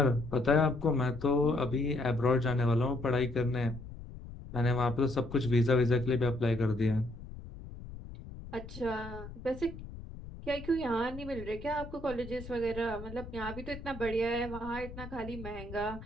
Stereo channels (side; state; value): left; noise; rumble, 13 dB below the sound